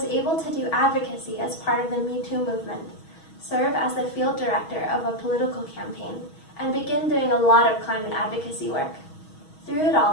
able to do advocacy as part of the Me Too movement, serve as the field director of a political campaign, and begin doing a lot of climate advocacy work. Through it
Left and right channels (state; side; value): late; right; 6.3 ms